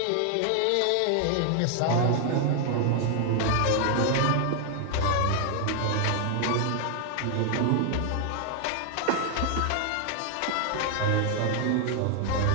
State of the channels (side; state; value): both; different; correlation 0.00